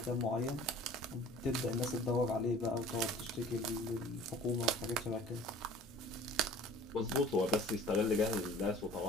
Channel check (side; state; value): both; normal; correlation 0.46